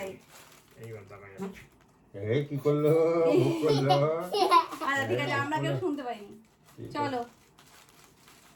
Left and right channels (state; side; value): identical; both; correlation 1.00